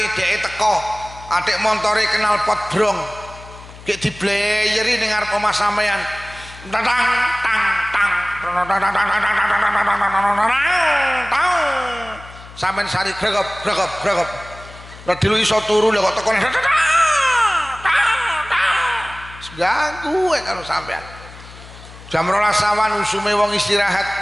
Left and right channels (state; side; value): noise; left; hum, 18 dB below the sound